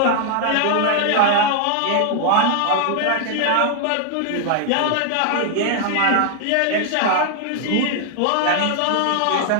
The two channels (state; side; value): different; both; correlation 0.00